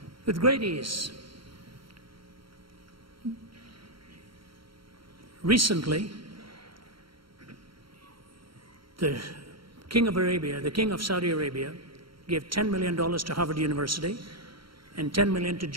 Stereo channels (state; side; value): late; left; 0.74 ms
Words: with great ease. Recently, the King of Arabia, the King of Saudi Arabia, gave $10 million to Harvard University and $10 million to